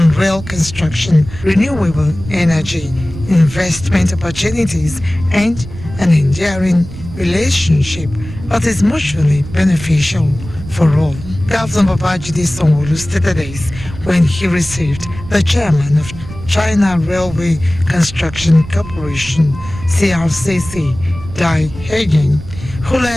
rail construction, renewable energy, investment opportunities, and an enduring relationship that is mutually beneficial for all. Governor Babajide Sanwo-Olu stated this when he received the chairman of China Railway Construction Corporation, CRCC, Dai Hagen, who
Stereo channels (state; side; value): noise; right; rumble, 13 dB below the sound